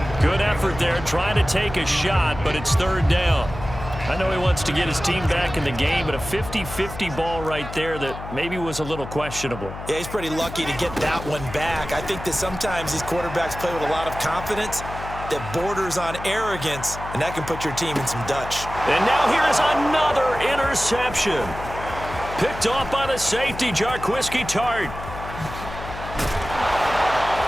Good effort there trying to take a shot, but it's third down. I know he wants to get his team back in the game, but a 50-50 ball right there that maybe was a little questionable. Yeah, he's pretty lucky to get that one back. I think that sometimes these quarterbacks play with a lot of confidence that borders on arrogance, and that can put your team in some Dutch. And now here is another interception. Picked off by the safety, Jarquiski Tart.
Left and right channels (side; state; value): left; noise; hum, 11 dB below the sound